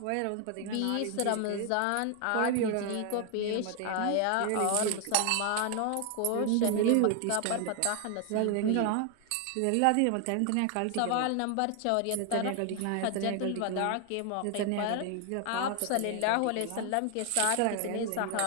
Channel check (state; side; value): different; both; correlation 0.00